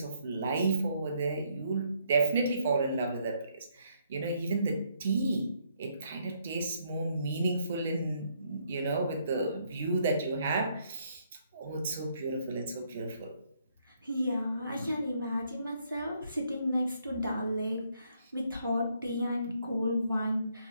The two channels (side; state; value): both; inverted; correlation -0.72